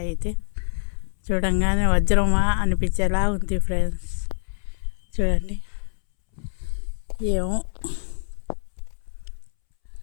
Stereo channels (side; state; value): right; silent; 62 dB below the other